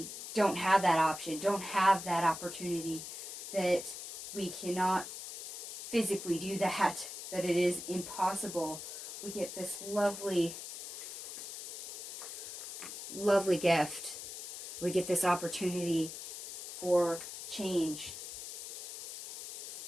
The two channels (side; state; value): left; noise; hiss, 9 dB below the sound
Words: don't have that option, don't have that opportunity, that we cannot physically do that it is impossible, we get this lovely, lovely gift. We get this opportunity for change.